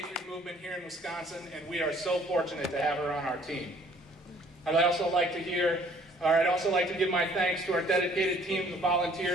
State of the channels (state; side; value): normal; both; correlation 0.58